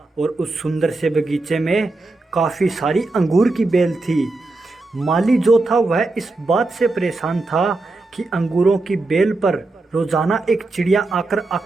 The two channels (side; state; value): left; quieter; 3.2 dB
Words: और उस सुंदर से बगीचे में काफ़ी सारी अंगूर की बेल थी। माली जो था वह इस बात से परेशान था कि अंगूरों की बेल पर रोजाना एक चिड़िया आकर